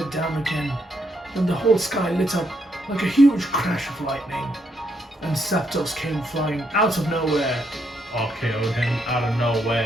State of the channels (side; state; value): both; normal; correlation 0.76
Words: down again. Then the whole sky lit up like a huge crash of lightning, and Zapdos came flying out of nowhere. RKO'd him out of